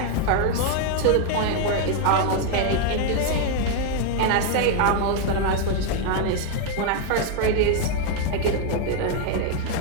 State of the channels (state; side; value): different; both; correlation 0.01